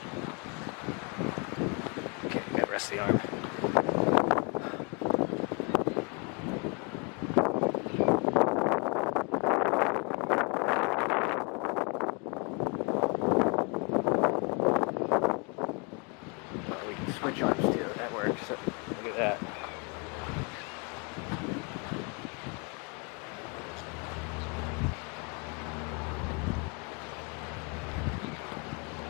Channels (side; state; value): right; quieter; 32.1 dB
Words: Okay, gotta rest the arm. We can switch arms too, that works. So look at that.